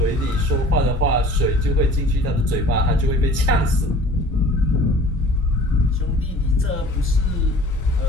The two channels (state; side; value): normal; both; correlation 0.47